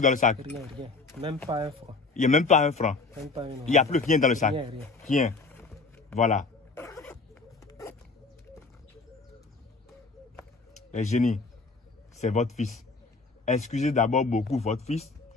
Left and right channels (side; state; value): right; quieter; 4.0 dB